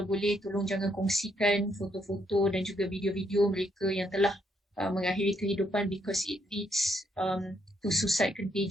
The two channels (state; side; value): normal; both; correlation 0.74